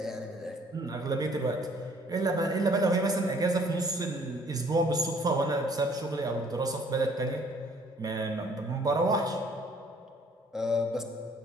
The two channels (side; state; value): both; normal; correlation 0.59